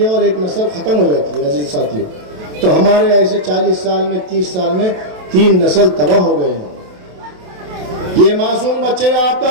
और एक नस्ल खत्म हो जाती है। अजीज साथियों, तो हमारे ऐसे 40 साल में, 30 साल में 3 नस्ल तबाह हो गए हैं। ये मासूम बच्चे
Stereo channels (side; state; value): left; late; 27 ms